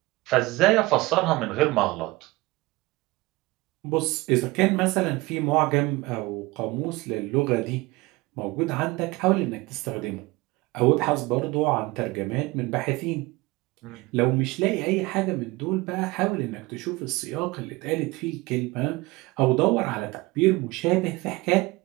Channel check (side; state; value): left; quieter; 21.9 dB